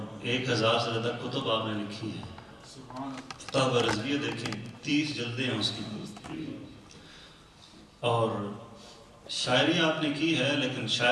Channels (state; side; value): identical; both; correlation 1.00